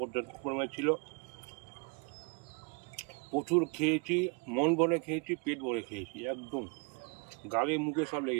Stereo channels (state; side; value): quieter; left; 32.6 dB